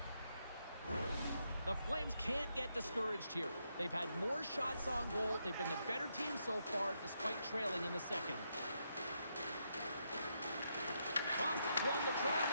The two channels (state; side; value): inverted; both; correlation -0.80